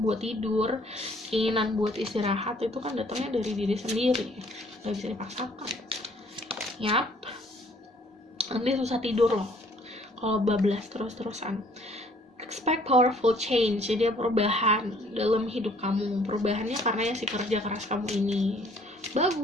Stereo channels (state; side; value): normal; both; correlation 0.60